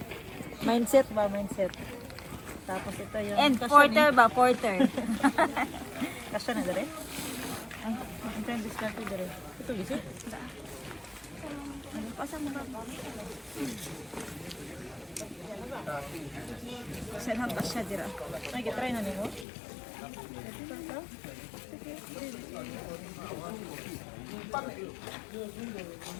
Mindset ba? Mindset. Tapos ito yung... And kasya porter ba? Porter. Kasya na dere? Ay, ang time discarte dere. Ito visit? Pasang mo ba? Saan ang pasya dira? Ay, kitry na nimo.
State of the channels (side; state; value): right; drops out; at 19.5 s